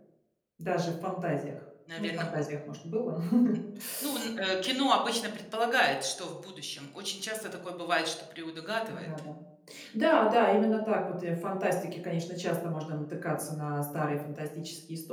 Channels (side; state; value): both; identical; correlation 1.00